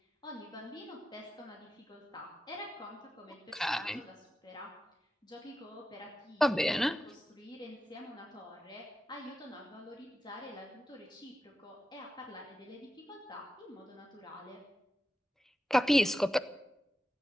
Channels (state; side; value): normal; both; correlation 0.91